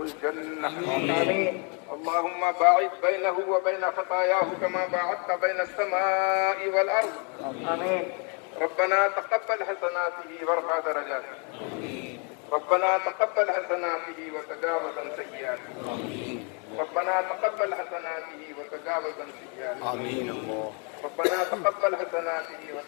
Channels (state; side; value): quieter; right; 36.7 dB